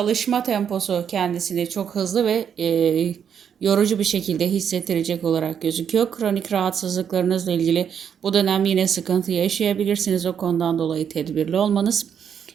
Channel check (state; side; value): quieter; left; 8.0 dB